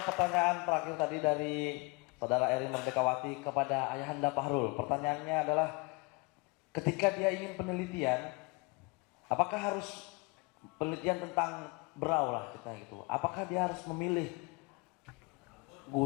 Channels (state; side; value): quieter; right; 28.2 dB